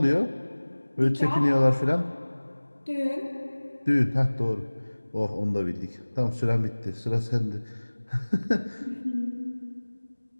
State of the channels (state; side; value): inverted; both; correlation -1.00